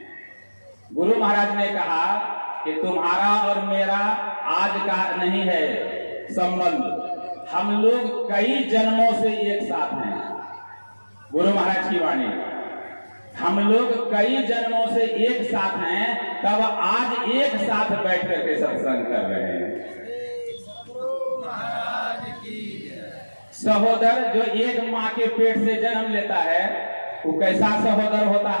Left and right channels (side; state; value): both; inverted; correlation -1.00